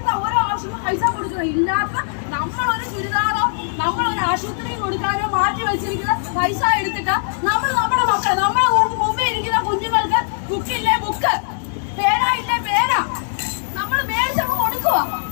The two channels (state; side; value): silent; right; 57 dB below the other